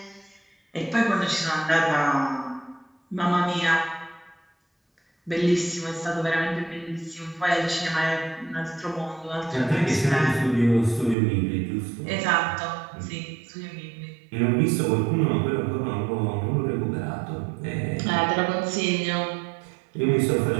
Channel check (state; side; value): drops out; left; at 11.2 s